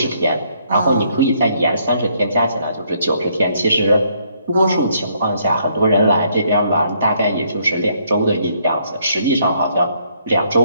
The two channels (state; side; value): inverted; both; correlation -0.69